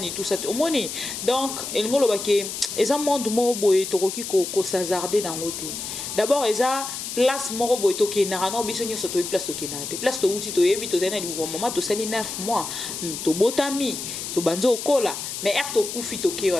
tout ça omoni donc elngolo bake eza monde mo boye tokoki ko s'hazarder dans côté d'abord eza place moko boye to kenara no biso nyoso to place to kenate place to uti to yebi to zena li maman to sali 9 mois to botami to banzo kola mais er to kufi to ke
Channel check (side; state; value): left; noise; hiss, 6 dB below the sound